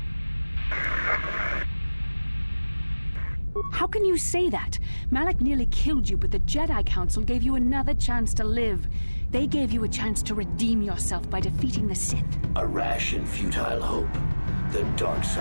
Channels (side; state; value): both; inverted; correlation -1.00